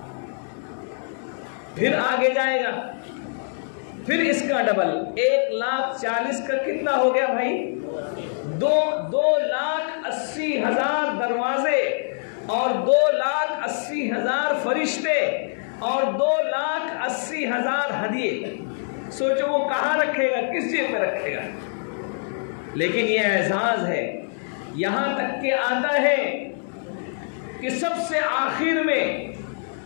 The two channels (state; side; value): silent; right; digital silence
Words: फिर आगे जाएगा, फिर इसका डबल। 1,40,000 का कितना हो गया भाई? 2,80,000 दरवाजे, और 2,80,000 फरिश्ते, और 2,80,000 हदिये। सोचो वो कहाँ रखेगा, किस जेब में रखेगा। लेकिन ये एजाज है, यहां तक के आता है कि सबसे आखिर में